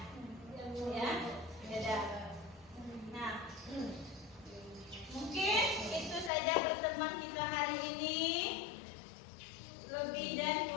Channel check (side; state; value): right; drops out; at 6.3 s